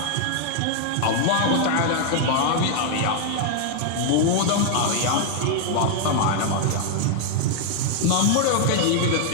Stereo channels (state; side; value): different; both; correlation 0.00